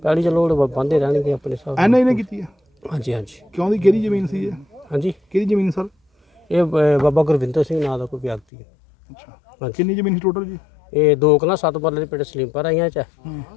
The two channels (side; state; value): right; drops out; at 8.4 s